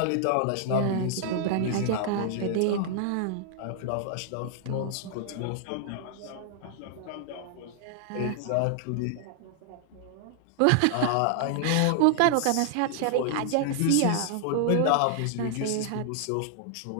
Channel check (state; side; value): different; both; correlation 0.00